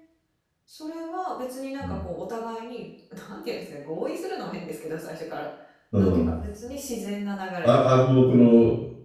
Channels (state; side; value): identical; both; correlation 1.00